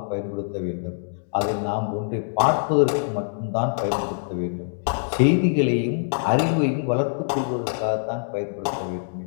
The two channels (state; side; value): silent; right; digital silence